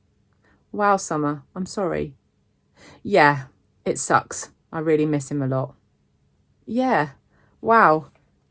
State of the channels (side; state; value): both; identical; correlation 1.00